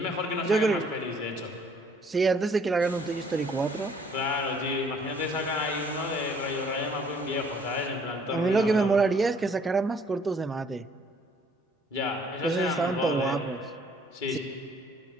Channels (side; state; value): both; normal; correlation 0.61